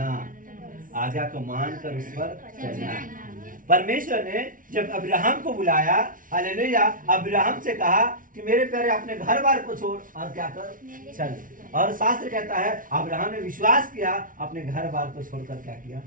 आज्ञा को मानकर उस पर चलना। परमेश्वर ने जब अब्राहम को बुलाया, हालेलुया, अब्राहम से कहा कि मेरे प्यारे अपने घर बार को छोड़ और क्या कर, चल। और शास्त्र कहता है अब्राहम ने विश्वास किया, अपने घर बार को छोड़कर क्या किया,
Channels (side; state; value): left; late; 0.39 ms